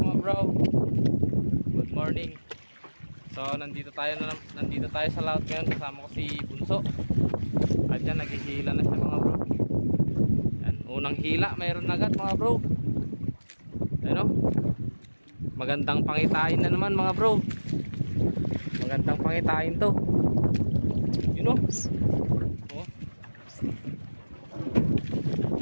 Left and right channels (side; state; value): both; inverted; correlation -1.00